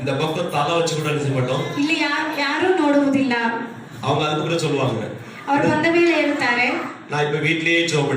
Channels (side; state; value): both; identical; correlation 1.00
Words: இந்த பக்கம் தலை வச்சு கூட நினைக்க மாட்டோம். ಇಲ್ಲಿ ಯಾರು ನೋಡುವುದಿಲ್ಲ. அவங்க அதுக்கப்புறம் சொல்லுவாங்க, ಅವರು ಬಂದ ಮೇಲೆ ಹೇಳ್ತಾರೆ, நான் இப்ப வீட்லயே ஜெபம்